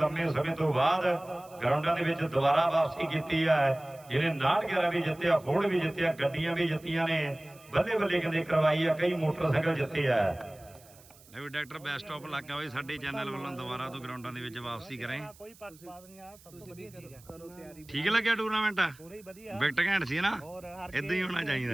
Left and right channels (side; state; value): right; noise; hiss, 24 dB below the sound